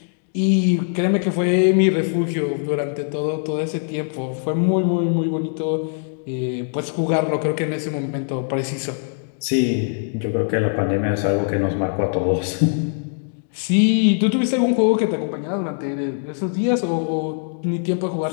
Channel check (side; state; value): right; silent; digital silence